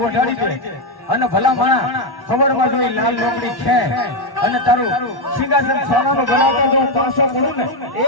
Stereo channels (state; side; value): late; right; 1.1 ms